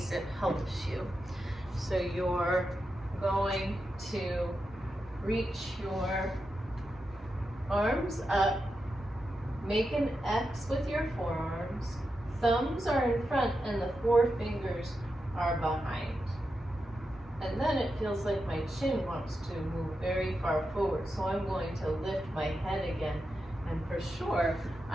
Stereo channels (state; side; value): normal; both; correlation 0.88